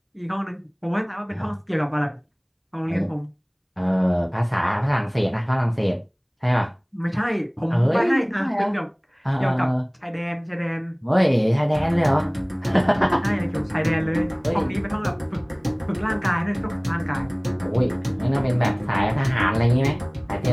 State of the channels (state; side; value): identical; both; correlation 1.00